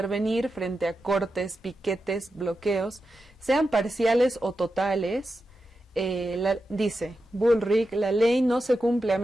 frente a cortes, piquetes, bloqueos, sean parciales o totales. Dice Bullrich, la ley no se cumple a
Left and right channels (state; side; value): normal; both; correlation 0.89